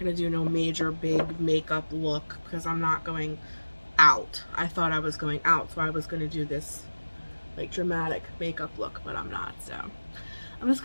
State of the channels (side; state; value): both; inverted; correlation -1.00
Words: do no major big makeup look because I'm not going out. I thought I was going out, so I was gonna do this like dramatic makeup look, but I'm not. So I'm just